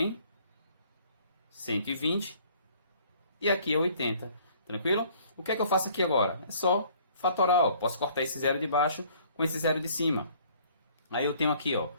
120. E aqui é 80. Tranquilo? O que é que eu faço aqui agora? É só fatorar, ó. Posso cortar esse zero de baixo com esse zero de cima. Aí eu tenho aqui, ó,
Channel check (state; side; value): inverted; both; correlation -0.57